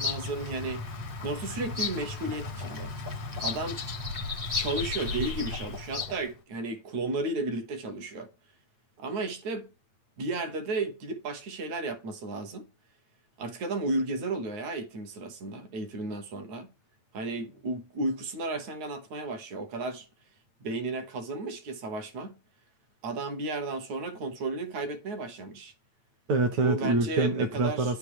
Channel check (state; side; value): late; left; 8.8 ms